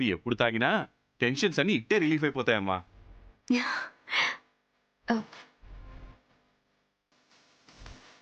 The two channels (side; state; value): both; identical; correlation 1.00